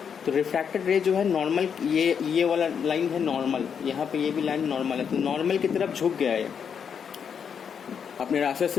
तो रिफ्रैक्टेड रे जो है नॉर्मल, ये वाला लाइन है नॉर्मल, यहाँ पे ये भी लाइन नॉर्मल है, तो नॉर्मल की तरफ झुक गया है, अपने रास्ते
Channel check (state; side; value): quieter; right; 7.2 dB